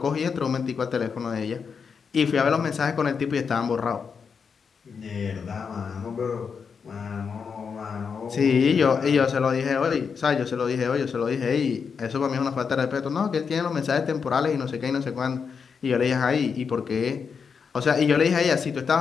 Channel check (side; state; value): right; quieter; 6.0 dB